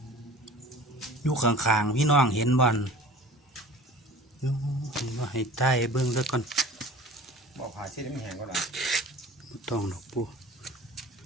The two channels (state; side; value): normal; both; correlation 0.43